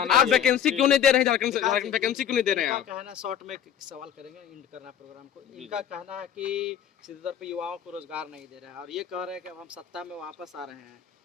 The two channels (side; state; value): right; quieter; 9.2 dB